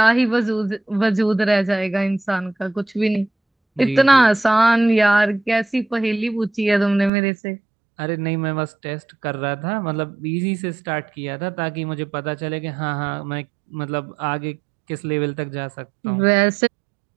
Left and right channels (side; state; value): left; drops out; at 7.1 s